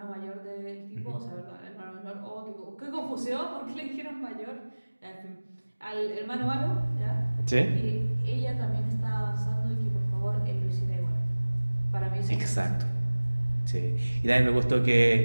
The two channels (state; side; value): inverted; both; correlation -1.00